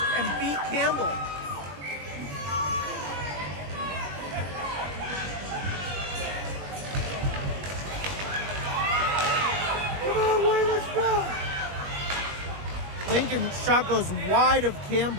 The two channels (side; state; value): left; late; 21 ms